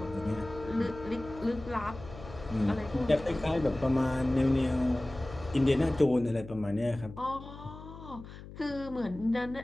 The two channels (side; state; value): left; noise; hum, 15 dB below the sound